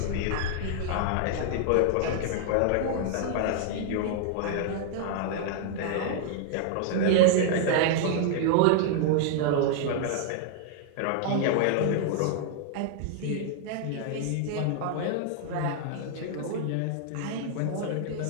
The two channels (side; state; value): both; different; correlation 0.00